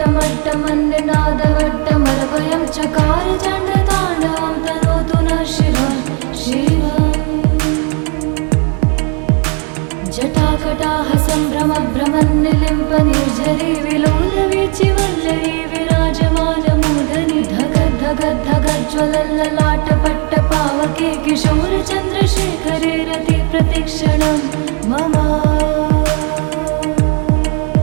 चकार चण्डताण्डवं तनोतु नः शिवं शिवम् जटाकटाह सम्भ्रमभ्रमन्निलिम्प निर्झरी विलोलवीचि वल्लरी विराजमानमूर्धनि धगद्धगद्धगज्ज्वलल्ललाटपट्टपावके किशोरचन्द्रशेखरे रति प्रतिक्षणं मम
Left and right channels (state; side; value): quieter; left; 36.7 dB